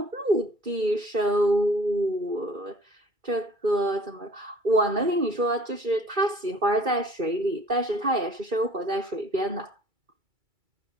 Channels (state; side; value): late; left; 2.3 ms